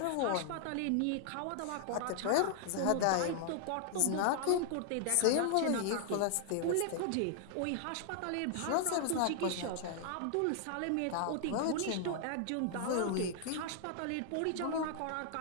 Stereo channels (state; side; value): different; both; correlation 0.00